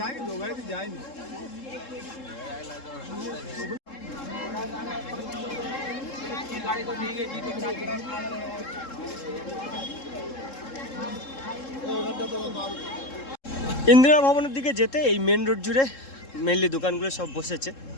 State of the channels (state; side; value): late; right; 3.7 ms